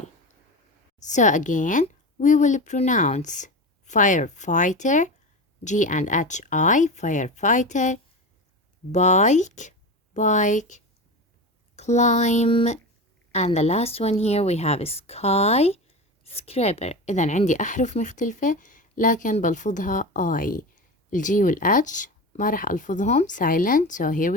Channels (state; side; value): normal; both; correlation 0.25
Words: So again, we will pronounce firefighter, G and H I, firefighter, bike, climb, and the last one here we have skyscraper. إذا عندي أحرف مختلفة لكن بلفظها I. الجي والH ما راح ألفظهم silent. So here